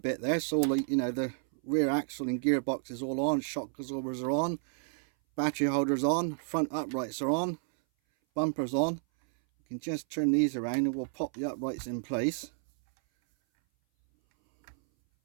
there. So all the, you know, the rear axle and gearbox is all on, shock absorbers are on, battery holders on, front uprights are on, bumpers on. You can just turn these around and we'll pop the uprights in place.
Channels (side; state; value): left; silent; 57 dB below the other